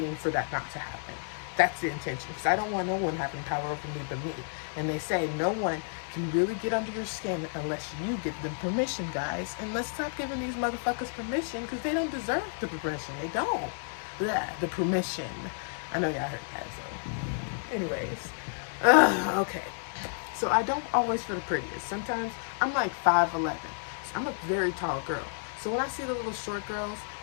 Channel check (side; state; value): right; silent; digital silence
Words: for that not to happen. That's the intention, because I don't want no one having power over me but me. And they say no one can really get under your skin unless you give them permission, guys. And let's stop giving these motherfuckers permission, because they don't deserve the permission. They don't. Blah, the permission. I know y'all heard that, so. Anyways. Okay. So I don't always feel the prettiest. Sometimes I'm like 5'11". So I'm a very tall girl. So when I see the little short girls,